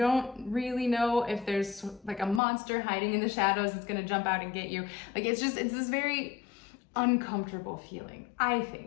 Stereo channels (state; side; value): drops out; right; at 2.4 s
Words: really know if there's like a monster hiding in the shadows that's gonna jump out and get you. Like it's this very uncomfortable feeling, I